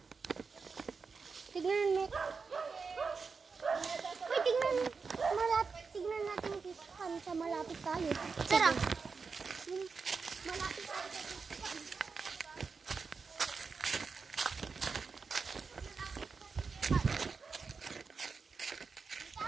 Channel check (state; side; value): quieter; left; 5.0 dB